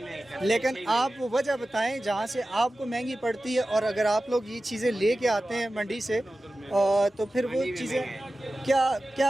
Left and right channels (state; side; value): normal; both; correlation 0.95